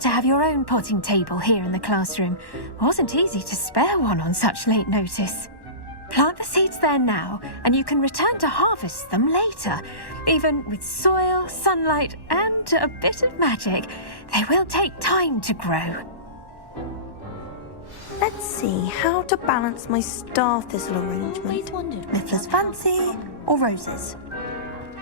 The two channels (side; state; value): right; late; 1.1 ms